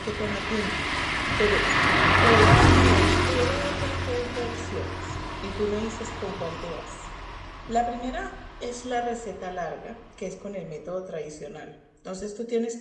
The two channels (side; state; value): both; identical; correlation 1.00